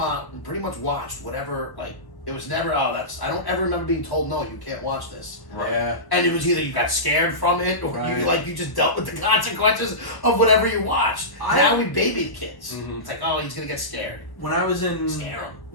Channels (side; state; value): right; late; 1.0 ms